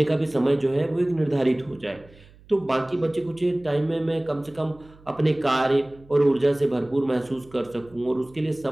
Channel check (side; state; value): right; noise; hum, 25 dB below the sound